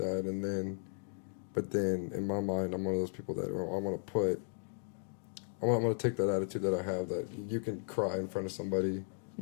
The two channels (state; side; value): silent; right; digital silence